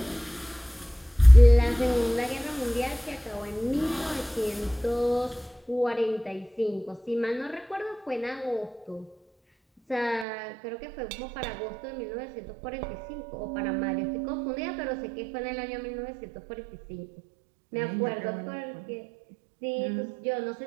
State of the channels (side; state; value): left; drops out; at 10.2 s